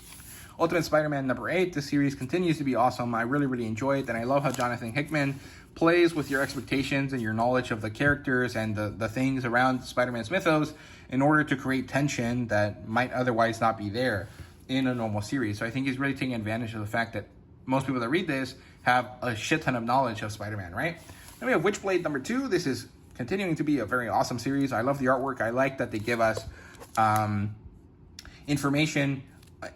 Ultimate Spider-Man number 8. This series continues to be awesome. I really, really enjoy it. And I love how Jonathan Hickman plays with your expectations and your knowledge of the characters and the things around Spider-Man's mythos in order to create tension that might otherwise not be there in a normal series. So I think he's really taking advantage of the fact that most people that read this have a shit ton of knowledge of Spider-Man, right? Then we have Witchblade number 2. This is continuing to be a very awesome series. I love the artwork. I like that they give us information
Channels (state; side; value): identical; both; correlation 1.00